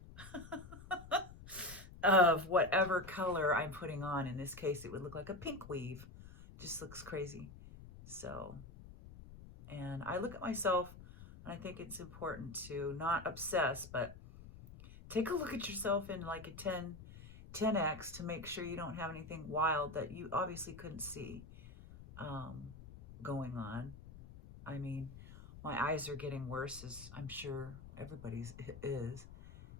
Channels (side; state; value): left; noise; rumble, 15 dB below the sound